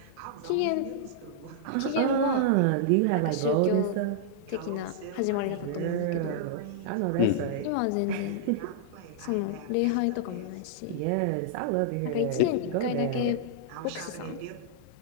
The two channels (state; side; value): different; both; correlation -0.02